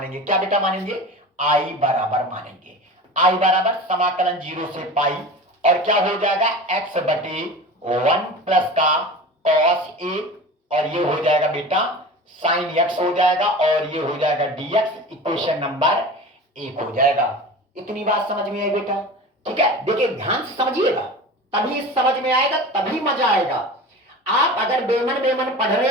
क्या बेटा मानेंगे? आई बराबर मानेंगे। आई बराबर समाकलन 0 से पाई और क्या हो जाएगा x बटे 1 प्लस का cos a और ये हो जाएगा बेटा साइन x हो जाएगा और ये हो जाएगा dx। इक्वेशन नंबर 1 हो जाएगा। इतनी बात समझ में आई बेटा, ठीक है। देखिए ध्यान से समझिएगा, तभी समझ में आएगा, तभी मजा आएगा। आप अगर बेमन बेमन पढ़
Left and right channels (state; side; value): normal; both; correlation 0.33